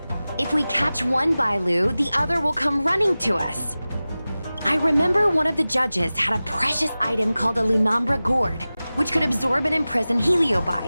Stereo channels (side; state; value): both; inverted; correlation -0.97